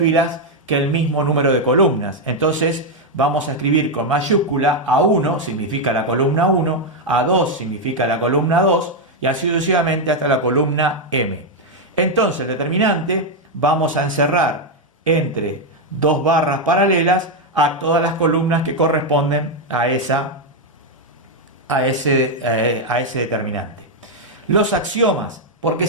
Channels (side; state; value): both; normal; correlation 0.02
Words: que el mismo número de columnas. Entonces vamos a escribir con mayúscula: A1 significa la columna 1, A2 significa la columna 2 y así sucesivamente hasta la columna M. Entonces el determinante vamos a encerrar entre dos barras paralelas a todas las columnas que corresponden a ese determinante. Los axiomas, ¿por qué